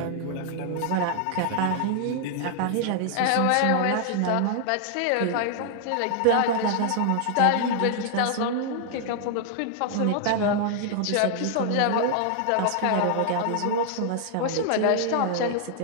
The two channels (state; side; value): different; both; correlation 0.00